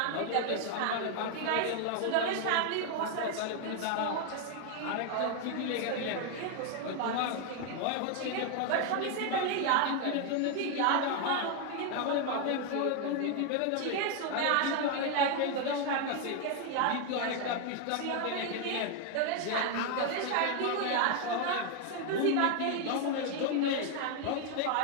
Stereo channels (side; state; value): both; different; correlation 0.01